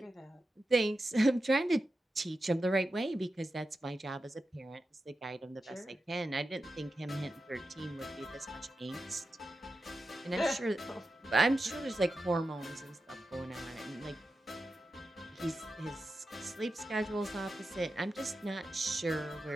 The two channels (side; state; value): both; normal; correlation 0.91